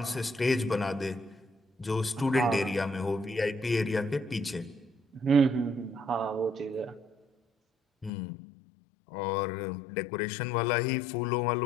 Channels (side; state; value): right; drops out; at 8.1 s